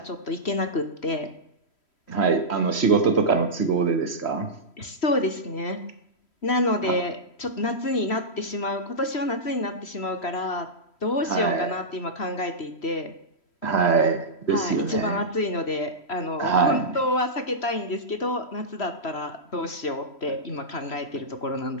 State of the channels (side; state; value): right; late; 3.1 ms